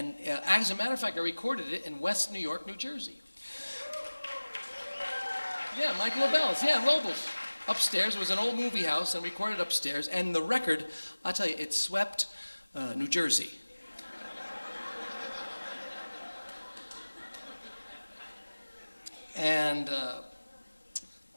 as a matter of fact, I recorded it in West New York, New Jersey. Yeah, Mike Lobel's. Yeah, Lobel's. Upstairs. It was an old movie house, and recorded upstairs. And the record, I'll tell you, it swept New Jersey. And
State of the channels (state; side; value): inverted; both; correlation -1.00